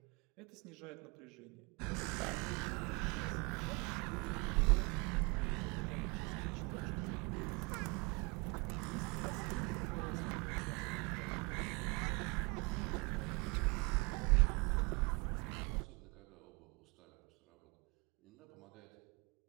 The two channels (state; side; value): quieter; left; 29.5 dB